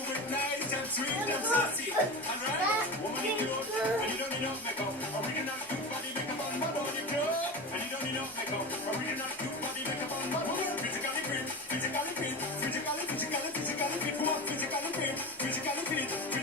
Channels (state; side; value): normal; both; correlation 0.27